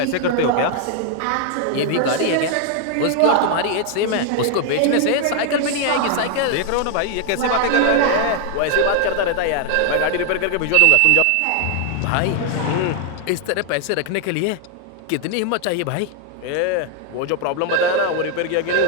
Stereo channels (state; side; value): different; both; correlation 0.00